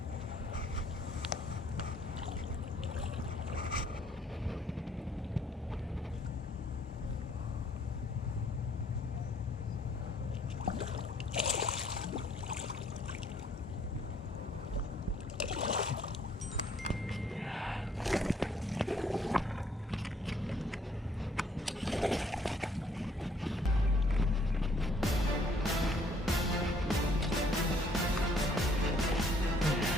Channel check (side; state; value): both; normal; correlation 0.64